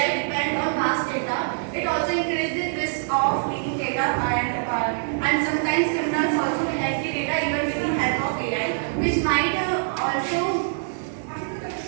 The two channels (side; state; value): left; silent; digital silence